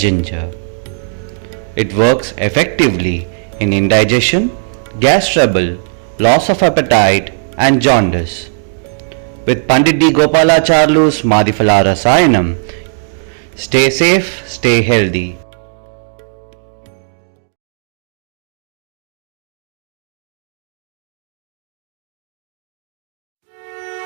It works effectively in indigestion, gas trouble, loss of appetite and jaundice. With Pandit D. Gopalacharlu's Madhifala Rasayanam, stay safe, stay healthy.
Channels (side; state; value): left; silent; 70 dB below the other